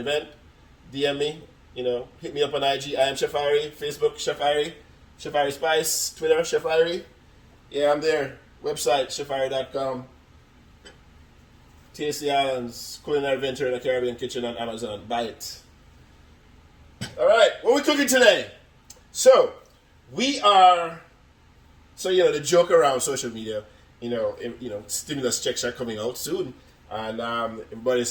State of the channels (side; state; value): both; identical; correlation 1.00